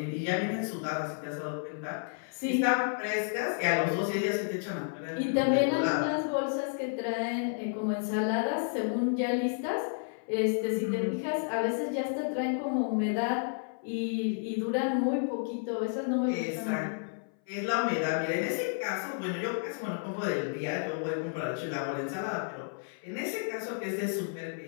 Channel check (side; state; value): right; silent; 57 dB below the other